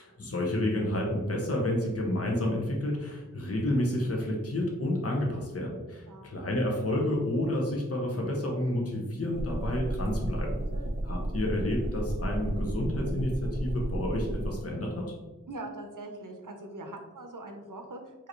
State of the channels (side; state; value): both; normal; correlation 0.68